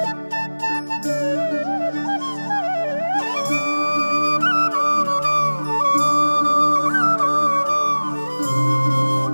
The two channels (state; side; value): inverted; both; correlation -1.00